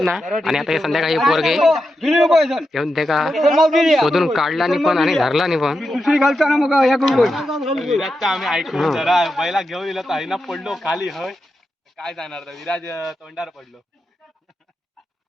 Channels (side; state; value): both; normal; correlation 0.88